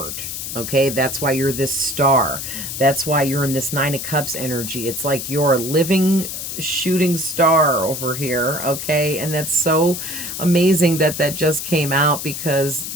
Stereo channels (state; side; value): noise; left; hiss, 6 dB below the sound